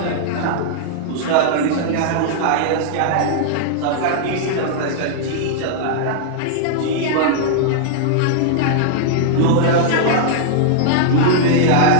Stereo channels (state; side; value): different; both; correlation -0.01